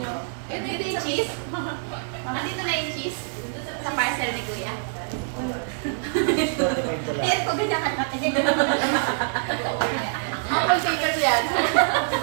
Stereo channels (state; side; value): silent; left; 61 dB below the other